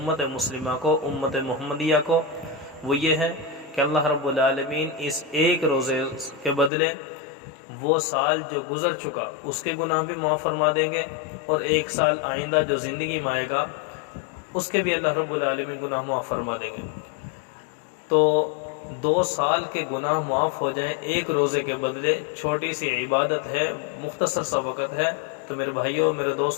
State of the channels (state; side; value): drops out; right; at 6.7 s